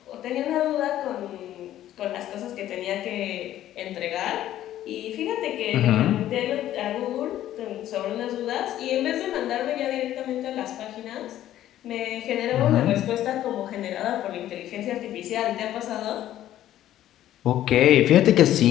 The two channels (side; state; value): right; quieter; 12.7 dB